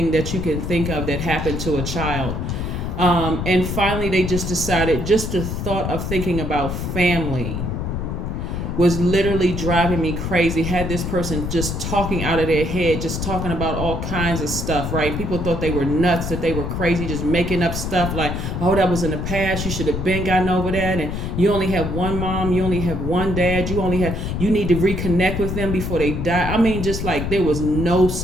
that you can think of that happened to a child. And finally, they just decided, just the thought of thinking about family was literally driving me crazy. Had this person just talking out of their head, just talking about all kinds of stuff, right? People thought they were nuts, that they were crazy, just making up stuff like, oh, that was in the past, you should have been gotten over that, and you only have one mom, you only have one dad, you need to reconnect with them before they die. I mean, just like there was no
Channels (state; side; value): noise; left; rumble, 3 dB below the sound